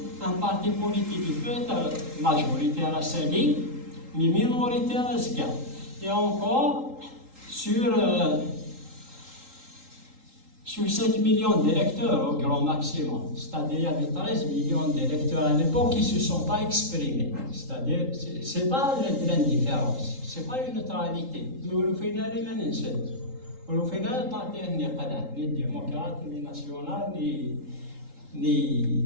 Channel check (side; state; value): left; late; 3.8 ms